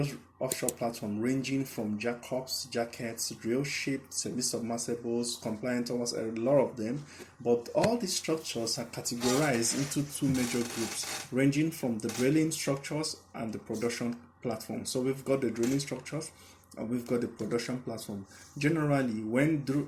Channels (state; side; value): identical; both; correlation 1.00